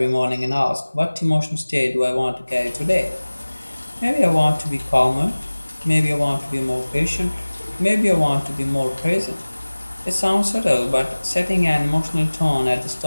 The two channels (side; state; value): both; inverted; correlation -1.00